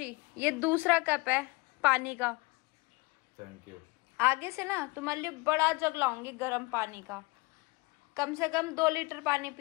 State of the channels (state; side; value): quieter; right; 26.1 dB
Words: ये दूसरा कप है पानी का। Thank you. आगे से ना तुम्हारे लिए बड़ा जग लाऊंगी गर्म पानी का। कम से कम 2 लीटर पानी